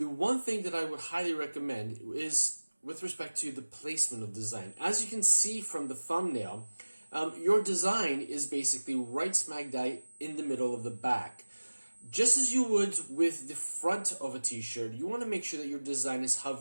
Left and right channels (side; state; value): both; inverted; correlation -1.00